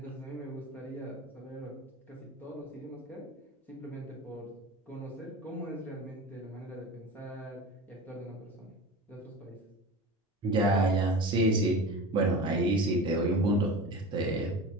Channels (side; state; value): both; normal; correlation 0.32